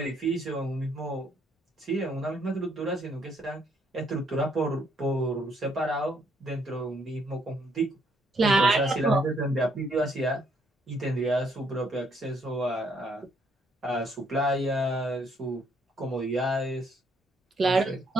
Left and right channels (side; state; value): both; normal; correlation 0.70